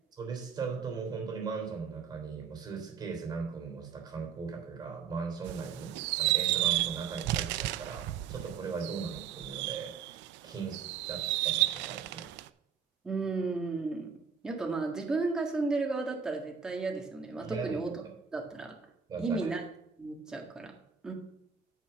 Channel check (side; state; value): left; quieter; 6.8 dB